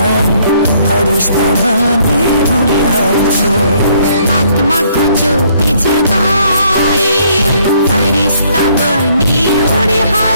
फरिश्ता बनी उड़ी हाथो। आत्मा को ज्योति जगाई फरिश्ता बनी उड़ी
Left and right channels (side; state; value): both; inverted; correlation -0.66